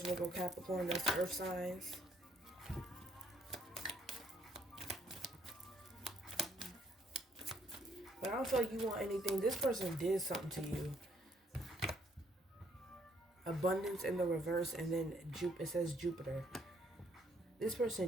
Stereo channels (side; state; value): both; normal; correlation 0.68